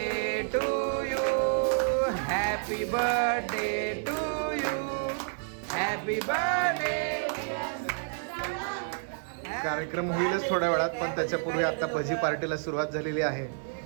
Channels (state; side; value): silent; left; digital silence